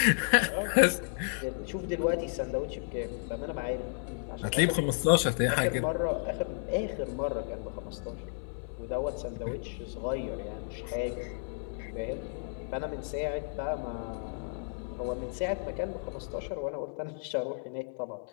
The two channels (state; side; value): silent; right; 56 dB below the other